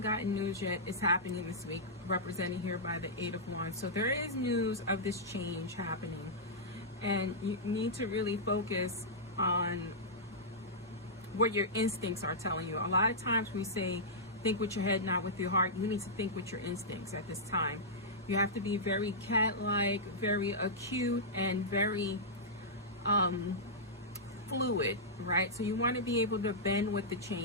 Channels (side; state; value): both; normal; correlation -0.11